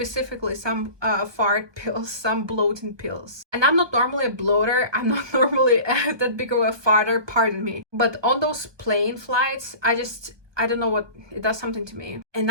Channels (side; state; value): left; late; 1.2 ms